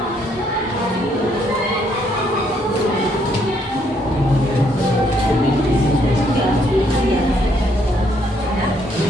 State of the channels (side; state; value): both; normal; correlation 0.70